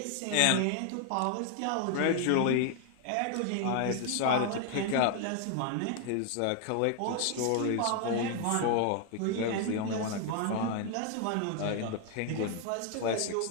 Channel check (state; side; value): different; both; correlation 0.00